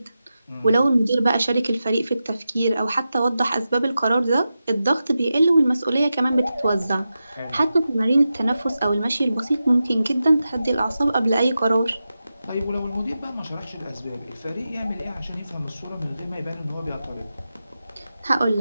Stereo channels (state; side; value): inverted; both; correlation -0.91